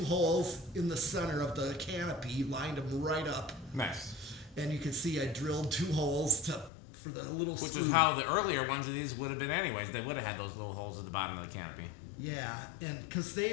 holes in the center of the canopy, lined them right up. Nice. And you can see I drilled 2 holes for the little screw. Which is how the earlier ones of these would have been anyways. They would have had those little holes at the bottom of the canopy. Yeah, and because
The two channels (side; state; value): right; drops out; at 6.7 s